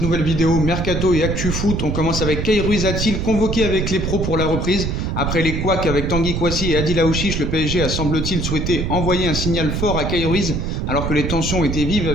nouvelle vidéo Mercato et Actu Foot. On commence avec Kay Ruiz a-t-il convoqué avec les pros pour la reprise. Après les couacs avec Tanguy Kouassi et Adil Aouchiche, le PSG a semble-t-il souhaité envoyer un signal fort à Kay Ruiz alors que les tensions étaient vives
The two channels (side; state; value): right; noise; rumble, 2 dB below the sound